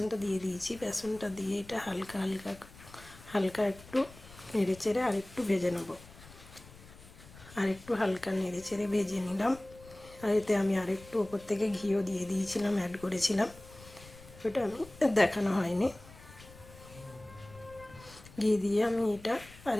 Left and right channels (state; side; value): noise; left; rumble, 20 dB below the sound